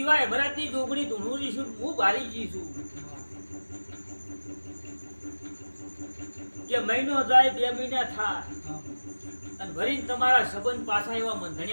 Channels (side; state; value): both; inverted; correlation -1.00